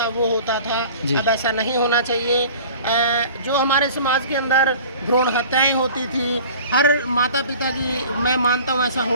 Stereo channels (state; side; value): inverted; both; correlation -0.44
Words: वो होता था, अब ऐसा नहीं होना चाहिए। जो हमारे समाज के अंदर भ्रूण हत्याएं होती थी, हर माता पिता की, मैं मानता हूँ ऐसा